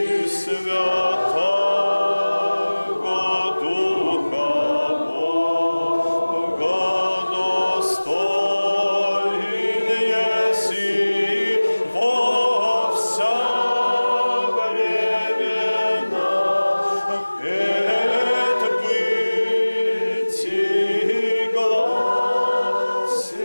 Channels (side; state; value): both; inverted; correlation -1.00